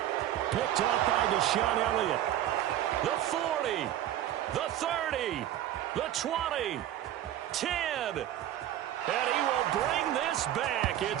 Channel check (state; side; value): quieter; left; 12.3 dB